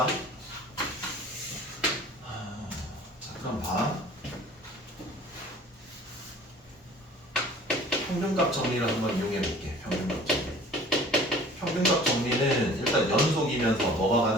자, 그럼 봐. 평균값 정리를 한번 이용해 볼게. 평균값 정리. 평균값 정리는 일단 연속이면서 뭐가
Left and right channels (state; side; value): normal; both; correlation 0.48